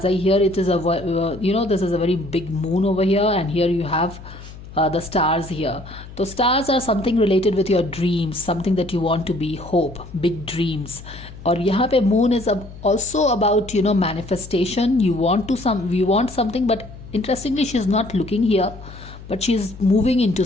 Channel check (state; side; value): noise; left; hum, 16 dB below the sound